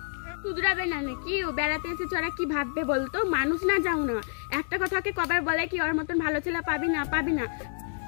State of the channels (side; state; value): right; silent; digital silence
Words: শুধরাবে না নাকি? ও বেড়াতে এসেছে, ওরা কি ভাববে বলতো? মানুষ না যাও না, একটা কথাকে কবার বলে কি ওর মতন ভালো ছেলে পাবি না, পাবি না।